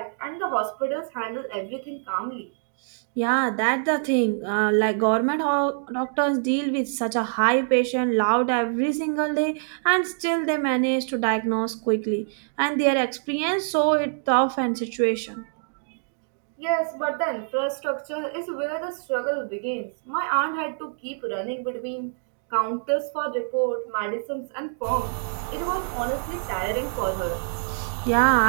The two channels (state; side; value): silent; left; digital silence